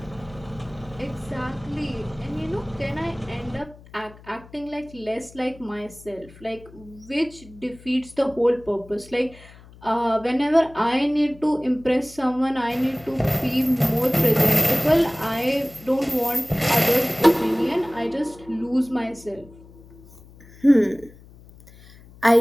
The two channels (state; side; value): noise; left; hum, 22 dB below the sound